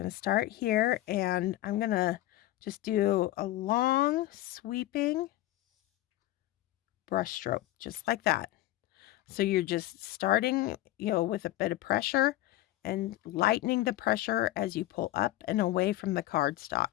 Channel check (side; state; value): right; quieter; 15.7 dB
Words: to start here, and I'm going to just do a long sweeping brush stroke, just like that. So you're just starting, with a bit of pressure and lightening the pressure as you pull up and away from the